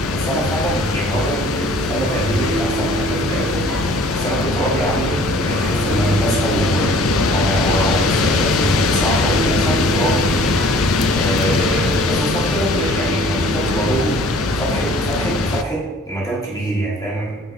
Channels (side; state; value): both; normal; correlation 0.52